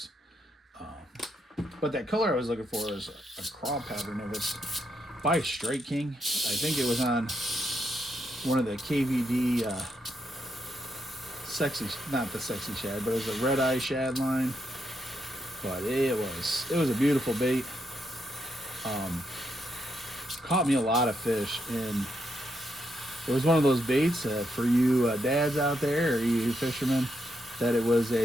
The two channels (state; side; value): normal; both; correlation 0.80